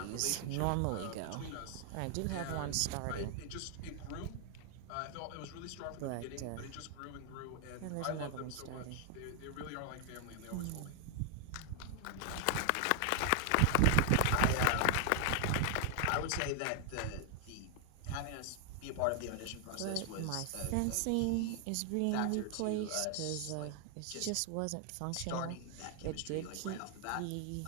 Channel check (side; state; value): both; different; correlation 0.00